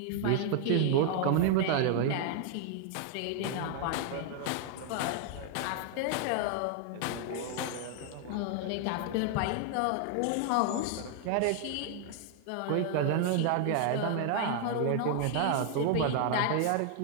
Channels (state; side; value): different; both; correlation 0.00